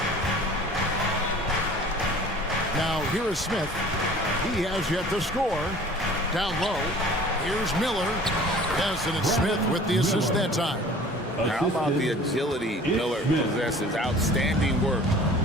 Now, here is Smith. He has yet to score. Down low, here's Miller. Yes, and it's Smith with the assist that time. How about the agility Miller possesses? Outstanding work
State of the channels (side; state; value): both; normal; correlation 0.47